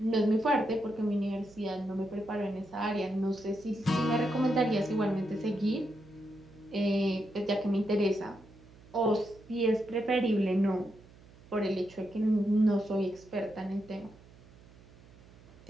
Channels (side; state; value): right; noise; hum, 23 dB below the sound